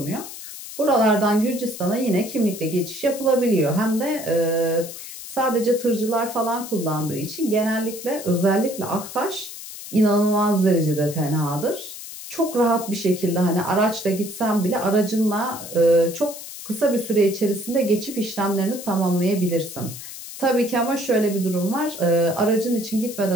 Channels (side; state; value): left; noise; hiss, 12 dB below the sound